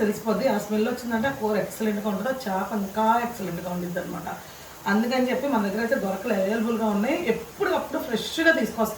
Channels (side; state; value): both; identical; correlation 1.00